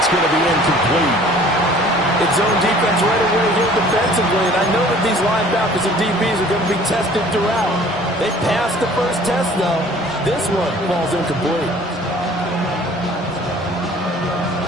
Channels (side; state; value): both; normal; correlation 0.51